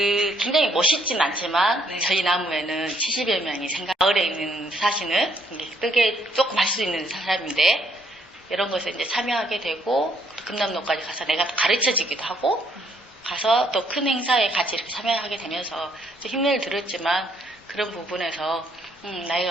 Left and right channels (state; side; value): normal; both; correlation 0.69